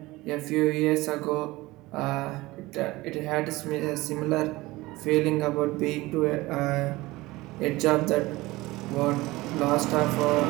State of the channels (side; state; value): left; quieter; 19.9 dB